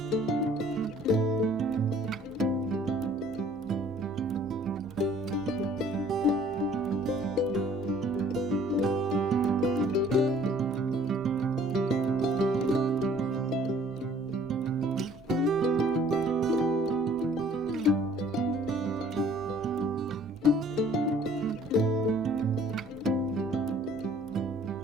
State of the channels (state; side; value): normal; both; correlation 0.55